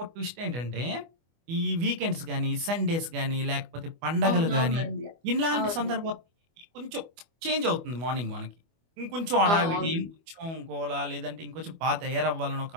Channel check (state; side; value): late; left; 24 ms